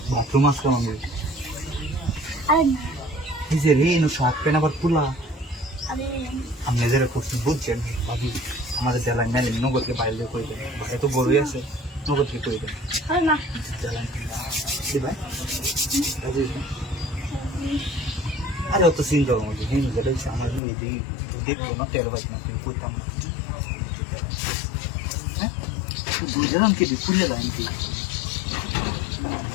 বাথরুম আসলাম আমি আর না এই যে রে এনো শার্ট প্যান্ট আবার খোলা আমি আমি নিজেরা করছি বুঝছেন ভাবি আমাদের জেলায় মেলে নগদকে বাইরে করে দেয় এত বড়ই আছে নগদকে করে দেয় আর না জেলায় ভাই আরে অত চিন্তা আমাদের হিন্দু যেটা হচ্ছে আমার দেখবো না 13 বাইক না করতাম না হ্যাঁ বুঝলাম কি খুলে লাইন কি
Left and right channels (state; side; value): drops out; right; at 20.6 s